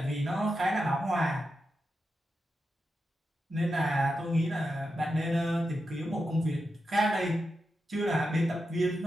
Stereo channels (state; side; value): normal; both; correlation 0.88